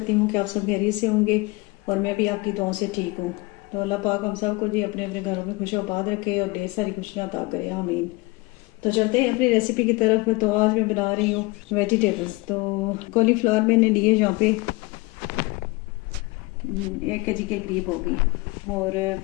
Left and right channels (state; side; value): quieter; right; 24.6 dB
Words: हूं कि आप सब खैरियत से होंगे और मैं भी आपकी दुआओं से ठीक हूं। तो अल्लाह पाक हम सब को जी अपने अपने घरों में खुश आबाद रखे और ढेर सारी खुशियां अता करे, आमीन। तो चलते हैं अपनी रेसिपी की तरफ। तो आज मैं बना रही हूँ वेजिटेबल्स। तो कॉलीफ्लावर मैंने लिए यहाँ पे 1 kg के करीब होगी, और